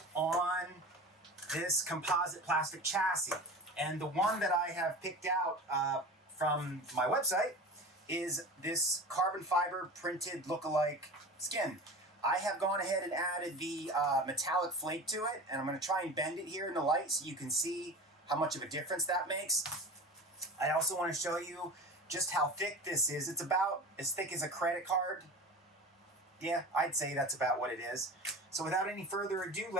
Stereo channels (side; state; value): both; normal; correlation 0.33